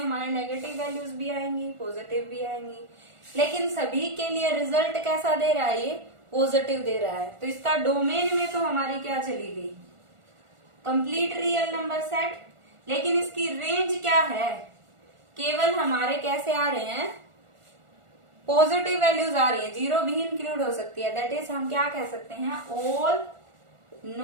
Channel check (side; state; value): left; late; 1.4 ms